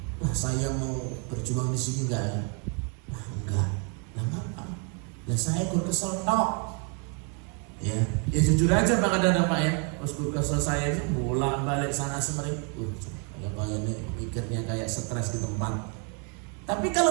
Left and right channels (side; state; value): left; quieter; 38.3 dB